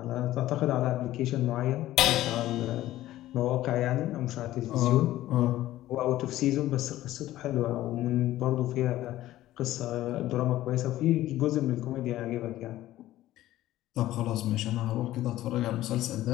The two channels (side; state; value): right; quieter; 14.8 dB